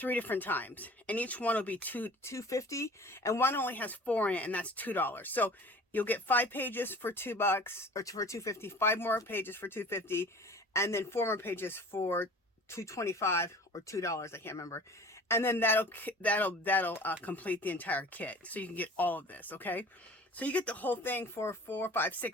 different times, and each one will be $2.50, and one only has 4 in it, and that's $2. So you'll get 5 pages for $2 or for $2.50, 5 more pages for $2.50, and then 4 more pages for $2.25 or $2. I can't remember. And then that'll complete the entire kit, so you can get all of this. Okay, so you get the whole thing for $4, $5,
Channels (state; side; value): normal; both; correlation 0.44